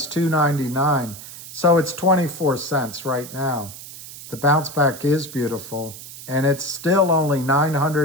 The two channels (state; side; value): noise; right; hiss, 14 dB below the sound